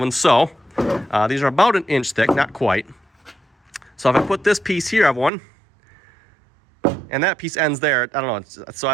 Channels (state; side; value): drops out; left; at 5.3 s